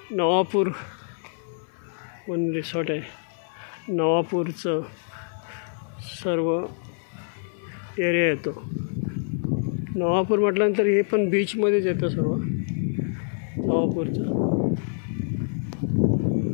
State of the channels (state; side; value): silent; right; 58 dB below the other